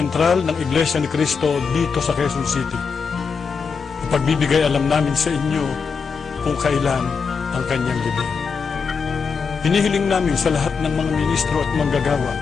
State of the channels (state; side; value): quieter; right; 5.5 dB